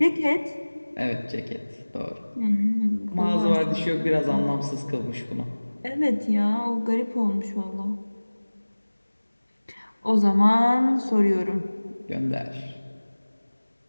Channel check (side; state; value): both; inverted; correlation -1.00